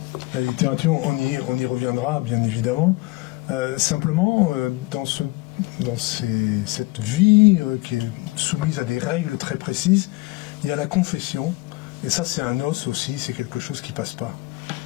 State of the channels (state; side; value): quieter; right; 21.9 dB